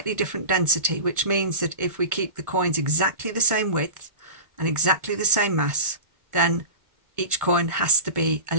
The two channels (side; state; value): left; late; 1.5 ms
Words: different density, which means that if we keep the coins exactly the same width and exactly the same mass, then each coin has to be a